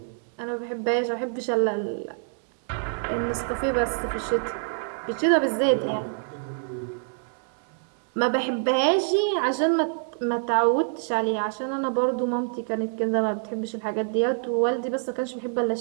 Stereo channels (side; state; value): left; silent; digital silence